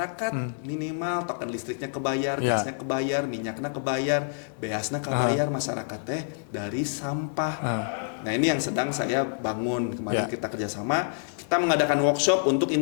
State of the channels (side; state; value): right; silent; digital silence